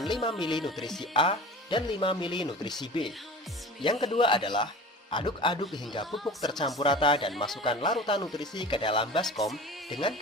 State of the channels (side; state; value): both; normal; correlation 0.38